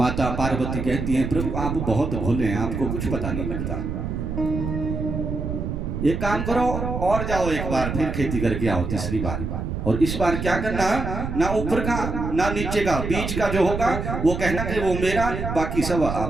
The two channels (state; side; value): noise; right; rumble, 4 dB below the sound